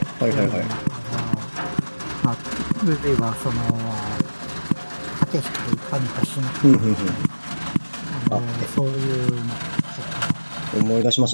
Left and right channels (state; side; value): inverted; both; correlation -1.00